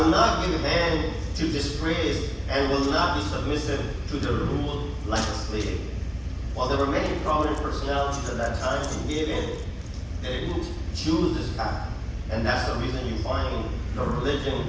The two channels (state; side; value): identical; both; correlation 1.00